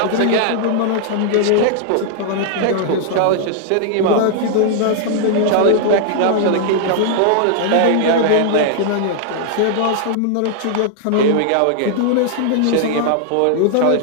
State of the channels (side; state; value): both; different; correlation -0.01